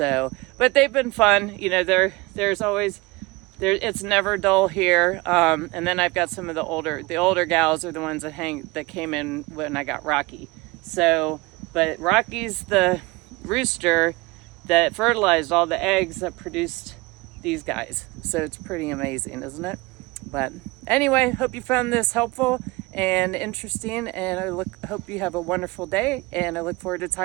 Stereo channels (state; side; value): quieter; left; 23.4 dB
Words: but they've been fun. You know, there's always. It's never dull here, and then I've got some of the older gals are the ones that came in when I got Rocky. So, but Rocky's the rooster that fertilized all the eggs that produced these guys. So it's pretty amazing, isn't it? But anyway, hope you found this helpful and interesting, and I hope you have a wonderful day, and I look forward to